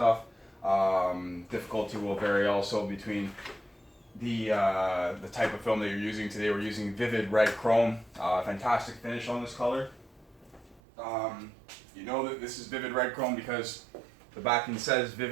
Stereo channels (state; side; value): drops out; left; at 10.8 s